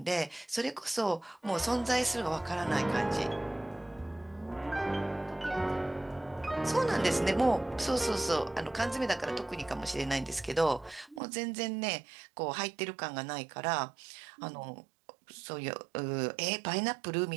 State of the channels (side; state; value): left; drops out; at 11.2 s